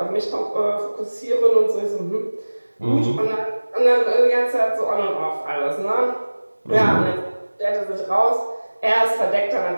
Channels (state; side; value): inverted; both; correlation -1.00